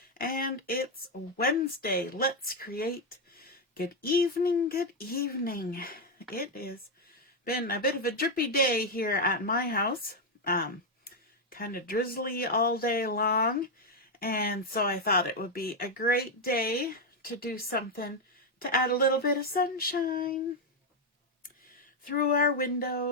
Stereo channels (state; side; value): normal; both; correlation 0.03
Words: and it's Wednesday. Let's create. Good evening, good evening. It has been a bit of a drippy day here at my house. Kind of drizzly all day long, and so I thought it would be a great day to do something to add a little bit of sunshine through our